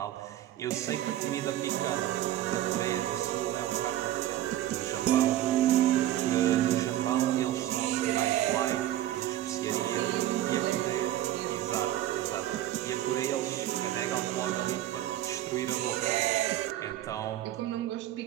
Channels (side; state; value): left; quieter; 13.2 dB